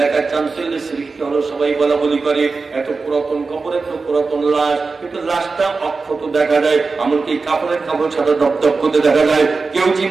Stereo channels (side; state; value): left; quieter; 4.2 dB